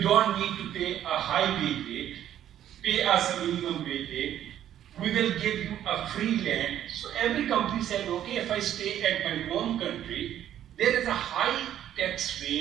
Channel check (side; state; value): left; quieter; 11.1 dB